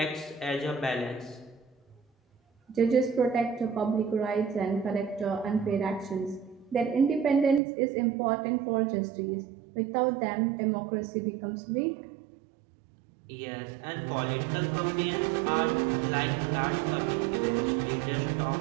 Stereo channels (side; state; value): left; drops out; at 7.6 s